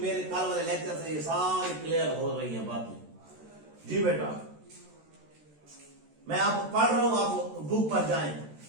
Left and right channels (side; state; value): left; late; 13 ms